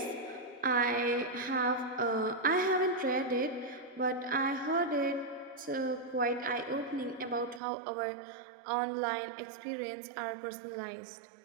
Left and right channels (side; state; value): left; drops out; at 7.6 s